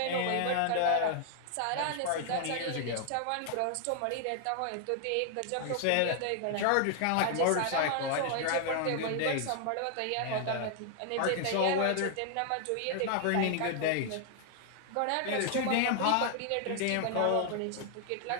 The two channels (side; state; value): both; different; correlation 0.00